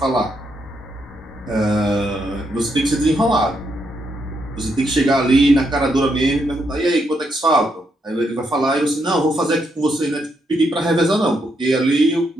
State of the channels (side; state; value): both; normal; correlation 0.78